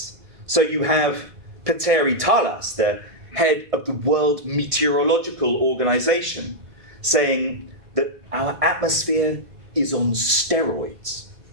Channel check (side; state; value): left; late; 2.1 ms